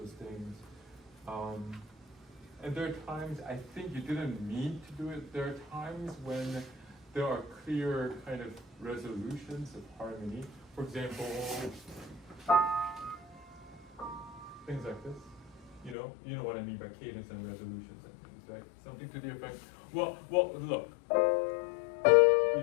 things. And there are times, I think you didn't mean to do it. There are times when there are clear kind of resolutions of harmony. For example, things like this. You know what I mean by cadence and resolutions and things, right? Something to the effect. Well, look. You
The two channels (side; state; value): right; drops out; at 16.0 s